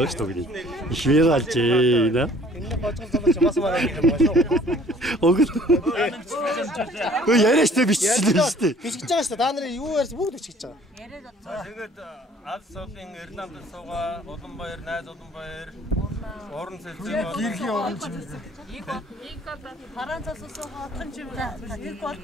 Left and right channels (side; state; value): both; normal; correlation 0.55